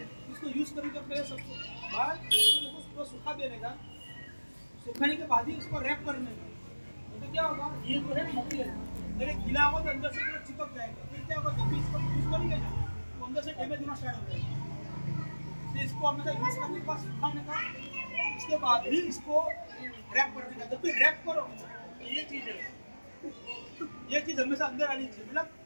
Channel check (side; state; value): both; inverted; correlation -1.00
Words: इसको यूज़ करने के पहले सबसे बाद इसको सूखा देने का, सुखाने के बाद ही इसको रैप करने का। तो क्या होगा, ये जो है मटेरियल अगर गीला होगा तो अंदर से पूरा चिपक जाएगा। फिर क्या होगा, जब भी इसको यूज़ करेंगे ना तो अंदर से डैमेज होना स्टार्ट हो जाएगा। तो इसको हमेशा यूज़ करने के बाद सुखाने का, इसके बाद ही इसको रैप करने का। जब भी रैप करो ये चीज़ है, ये चीज़ हमेशा अंदर आनी चाहिए। मतलब